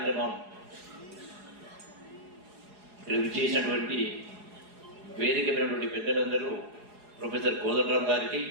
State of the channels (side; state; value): left; late; 4.8 ms